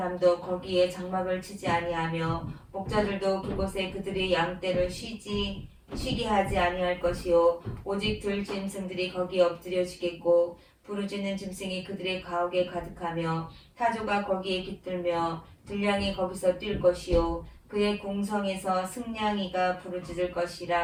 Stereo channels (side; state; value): both; identical; correlation 1.00